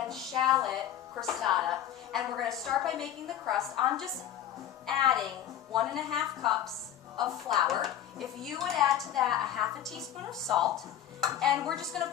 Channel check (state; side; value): quieter; right; 10.8 dB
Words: shallot crostata, and we're going to start by making the crust. I'm just adding 1½ cups of flour. If you would add to that a ½ teaspoon of salt, and we're just going